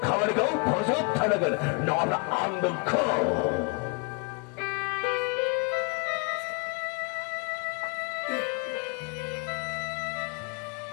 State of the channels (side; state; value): right; quieter; 34.0 dB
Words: 가고 버섯 타나건 너는 안 넣고.